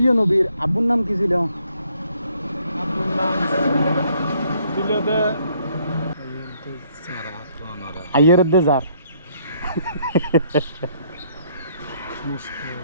নবীর আব্বুর নাম কি ছিল? আব্দুল নাম ছিল দে আইয়রদ্দে জার।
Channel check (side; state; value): both; inverted; correlation -0.67